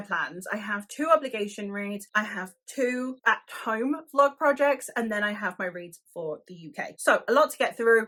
I have 2 obligation reads, I have 2 at-home vlog projects, and then I have my reads for the UK. So a lot to get through.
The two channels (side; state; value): both; identical; correlation 1.00